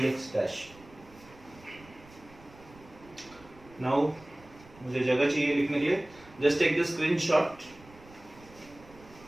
dash. Now मुझे जगह चाहिए लिखने के लिए, जस्ट टेक द स्क्रीनशॉट।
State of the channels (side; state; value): right; noise; rumble, 23 dB below the sound